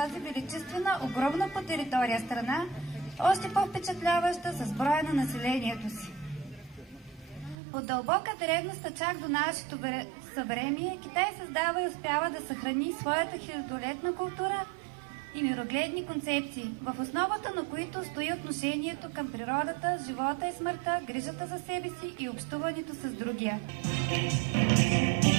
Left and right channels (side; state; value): left; drops out; at 7.6 s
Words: величествена, огромна по територия страна, още по-впечатляваща с броя на населението си. От дълбока древност чак до нашето съвремие, Китай създава и успява да съхрани своята хилядолетна култура и мирогледни концепции, в основата на които стои отношението към природата, живота и смъртта, грижата за себе си и общуването с другия.